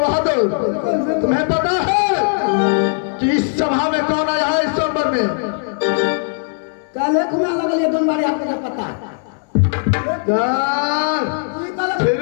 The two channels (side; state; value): right; silent; 64 dB below the other